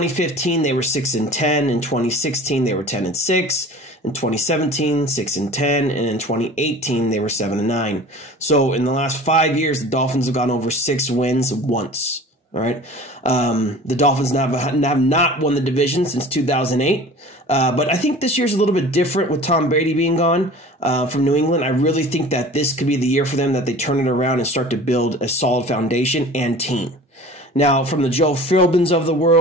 they were 6-10. In 2016, they were 10-6. In 2017, 6-10. And in 2018, they were 7-9. So in the last 5 years, the Dolphins have gone over 6 wins once. All right. The Dolphins have not won the division since 2008. But I think this year's a little bit different with Tom Brady being gone from New England. I really think that this could be the year for them that they turn it around and start to build a solid foundation and team. Now, from the Joe Philbins of the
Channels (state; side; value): normal; both; correlation 0.42